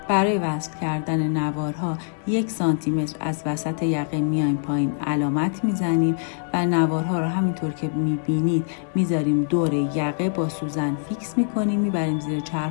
برای وصل کردن نوارها 1 سانتی متر از وسط یقه میایم پایین، علامت میزنیم و نوارها رو همینطور که میبینید میذاریم دور یقه، با سوزن فیکس میکنیم، میبریم زیر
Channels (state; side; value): silent; right; digital silence